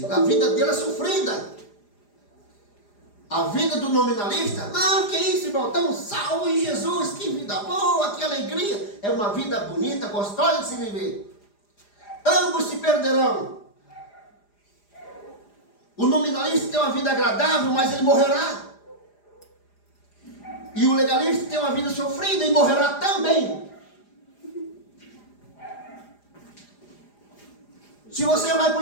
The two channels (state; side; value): late; right; 4.9 ms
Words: A vida dele é sofrida. A vida do nominalista, não, que isso, irmão, estamos salvos em Jesus, que vida boa, que alegria. É uma vida bonita, gostosa de se viver. Ambos se perderão. O nominalista tem uma vida agradável, mas ele morrerá. E o legalista tem uma vida sofrida e morrerá também. Se você vai para